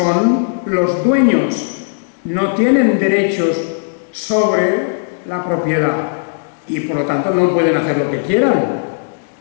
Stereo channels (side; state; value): right; silent; digital silence